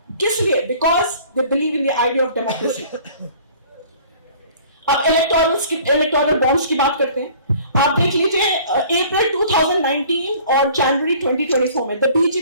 किस लिए? Because they believe in the idea of democracy. अब इलेक्टोरल बॉन्ड्स की बात करते हैं। आप देख लीजिए अप्रैल 2019 और जनवरी 2024 में the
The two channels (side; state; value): both; inverted; correlation -0.50